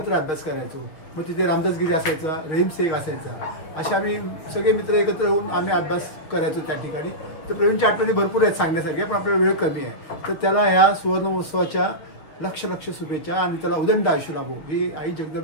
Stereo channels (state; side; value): late; right; 6.8 ms